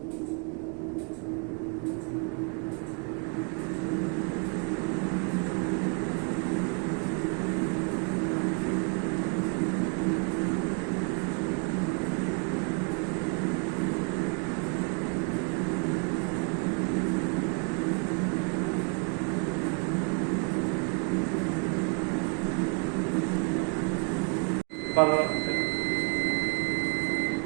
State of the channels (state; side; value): quieter; left; 36.4 dB